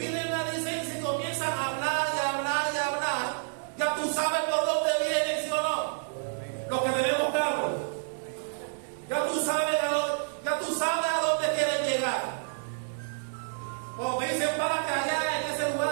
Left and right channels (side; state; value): left; silent; digital silence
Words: la licencia y comienzan a hablar y hablar y hablar. Ya tú sabes por dónde vienen, ¿sí o no? Los que tenemos carro. Ya tú sabes a dónde quieren llegar. Cuando te dicen párate allá en ese lugar